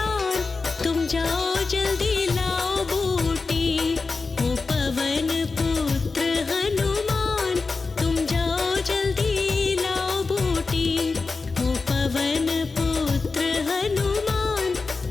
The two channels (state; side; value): quieter; right; 4.1 dB